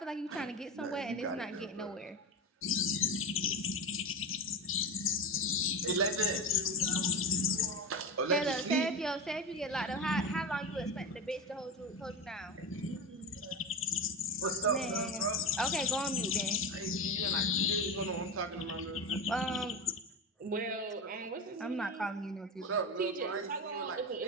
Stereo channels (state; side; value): normal; both; correlation 0.22